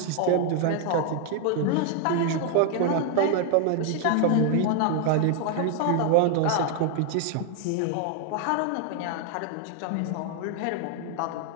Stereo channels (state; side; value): different; both; correlation 0.00